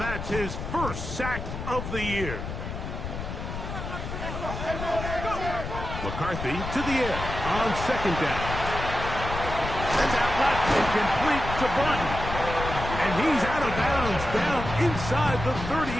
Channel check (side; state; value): left; noise; rumble, 6 dB below the sound